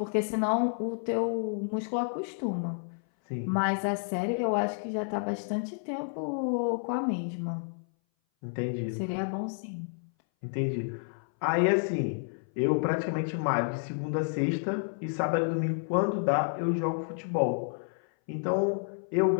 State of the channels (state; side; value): silent; right; 58 dB below the other